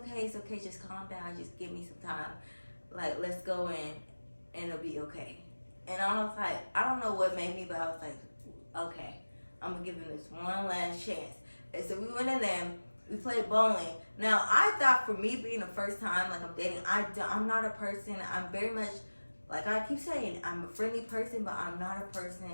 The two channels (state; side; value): inverted; both; correlation -1.00